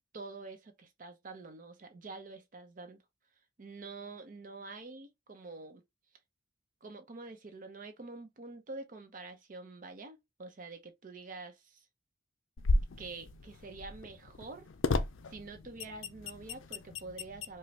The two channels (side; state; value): both; normal; correlation 0.56